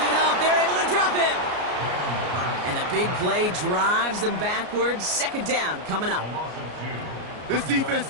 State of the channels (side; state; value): left; late; 33 ms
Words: up. They're able to drop him. And the big play drives them backwards. 2nd down coming up. This defense has